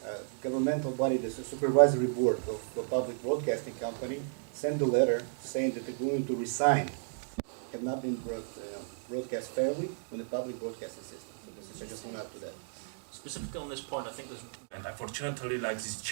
governmental body, the supervisory board of the public broadcasting company, sent a letter saying that they're going to resign, have not been broadcast fairly on the public broadcasting system. So I just want to add to that. Specifically on this point, I think there's, and unfortunately, like these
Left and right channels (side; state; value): left; silent; digital silence